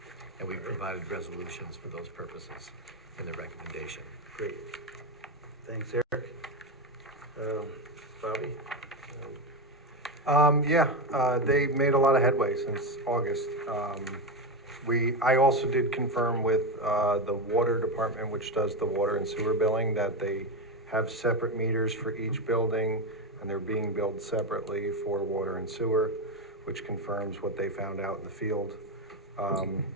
And we've provided resolutions for those purposes in the recommendation. Great. Thanks, Eric. Bobby? They made a lot of headway since August. I also did confirm with the water department, which does the water and sewer billing, that they have separate meters for each building, and they're being billed separately for water and sewer, which confirms what they found out in the field.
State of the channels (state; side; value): normal; both; correlation 0.13